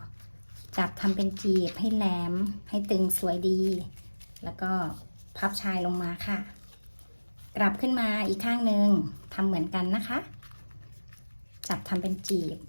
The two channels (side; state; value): both; inverted; correlation -1.00